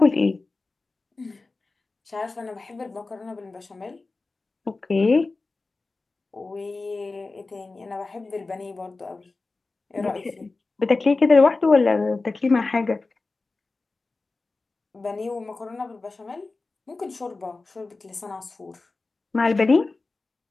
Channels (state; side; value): quieter; right; 3.6 dB